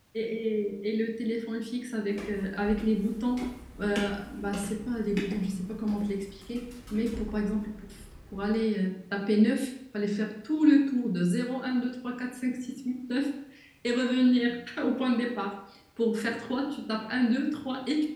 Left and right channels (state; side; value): identical; both; correlation 1.00